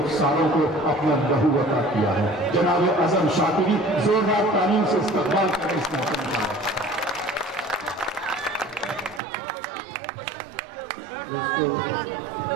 को अपना लहू अता किया है। जनाब अज़्म शाकिरी, जोरदार तालीम से इस्तकबाल करें इस मौके का। दोस्तों,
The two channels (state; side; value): drops out; left; at 9.2 s